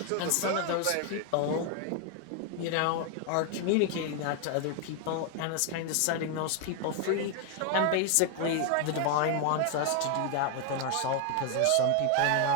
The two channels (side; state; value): both; different; correlation 0.01